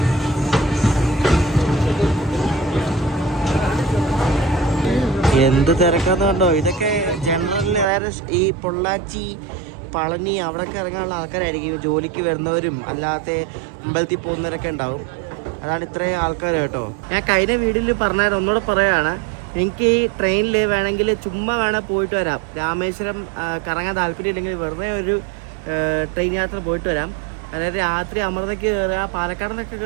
എന്ത് തിരക്കാന്ന് കണ്ടോ. ഇതൊക്കെ ജനറൽ ഈ പൊള്ളാച്ചി, പളനി അവിടെയൊക്കെ ഇറങ്ങാനുള്ള ആൾക്കാരായിരിക്കും. ജോലിക്ക് വരുന്നവരും അല്ലാത്ത അമ്പലത്തിൽ പോകുന്നവരൊക്കെ ഉണ്ടാവും. അതാണ് ഇത്രയും ആൾക്കാർ കേട്ടോ. ഞാൻ കഴിഞ്ഞ വീഡിയോയിൽ പറഞ്ഞാൽ ഒന്നുകൂടെ പറയുകയാണ്, നിങ്ങൾക്ക് ഈ ട്രെയിനിൽ വേണമെങ്കിൽ ചുമ്മാ വേണേൽ പോയിട്ട് വരാം. രാമേശ്വരം കറങ്ങാൻ താല്പര്യം ഇല്ലെങ്കിൽ വെറുതെ ഒരു ട്രെയിൻ യാത്ര പോയിട്ട് വരാം. അതായത് രാത്രി അമൃതയ്ക്ക് കയറുക, പാലക്കാടിനൊക്കെ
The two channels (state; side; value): drops out; left; at 7.9 s